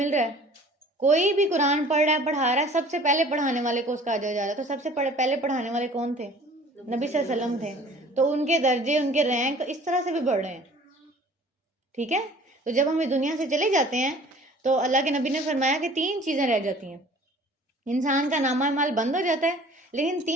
رہا ہے. کوئی بھی قرآن پڑھ رہا ہے، پڑھا رہا ہے، سب سے پہلے پڑھانے والے کو اس کا اجر جا رہا ہے. تو سب سے پہلے پڑھانے والے کون تھے؟ نبی صلی اللہ علیہ وسلم تھے. تو ان کے درجے، ان کے رینک اس طرح سے بھی بڑھ رہے ہیں. ٹھیک ہے. تو جب ہم اس دنیا سے چلے جاتے ہیں تو اللہ کے نبی نے فرمایا کہ 3 چیزیں رہ جاتی ہیں. انسان کا نامہ اعمال بند ہو جاتا ہے، لیکن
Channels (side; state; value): both; normal; correlation 0.49